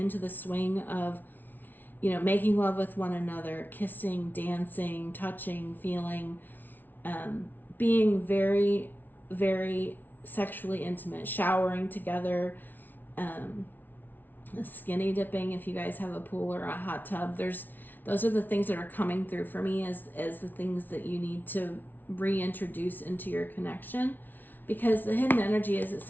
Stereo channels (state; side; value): late; right; 0.087 ms